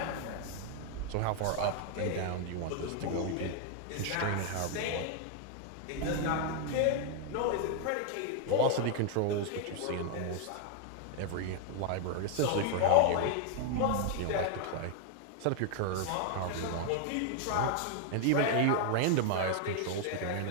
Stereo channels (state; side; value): different; both; correlation 0.00